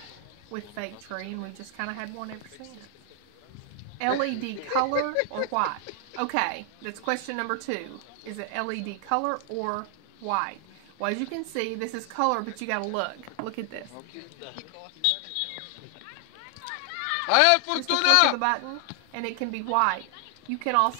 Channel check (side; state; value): both; different; correlation 0.00